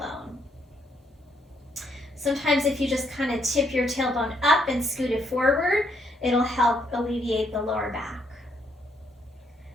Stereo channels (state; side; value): normal; both; correlation 0.72